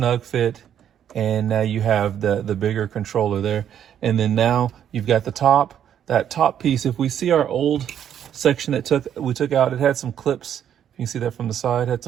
fit. And now you have the bigger controller there. And then now you've got that top piece. If we see our old section that we took out, it had some clips. You can see that from the side, had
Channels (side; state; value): left; quieter; 9.6 dB